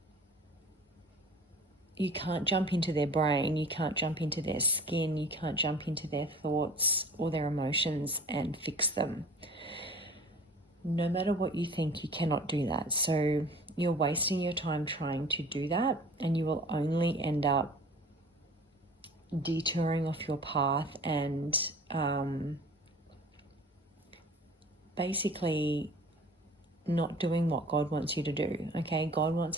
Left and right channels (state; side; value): normal; both; correlation 0.45